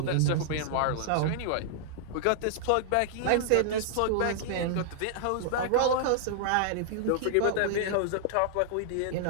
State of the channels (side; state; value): both; different; correlation -0.01